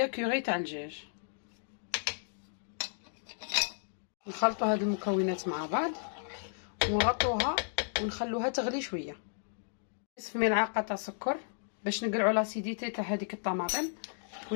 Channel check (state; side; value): silent; right; digital silence